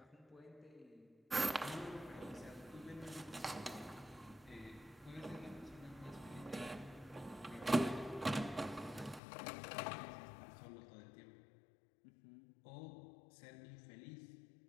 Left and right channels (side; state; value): right; drops out; at 9.2 s